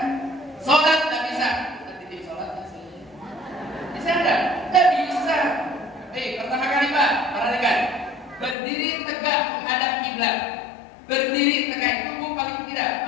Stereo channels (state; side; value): drops out; right; at 8.6 s